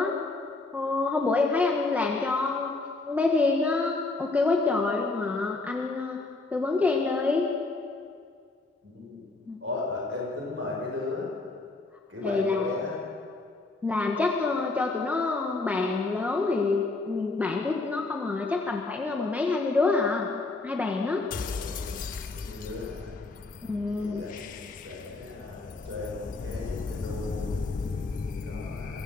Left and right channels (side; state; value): right; quieter; 3.4 dB